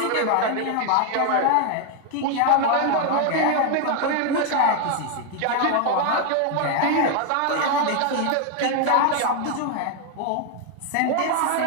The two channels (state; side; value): different; both; correlation 0.00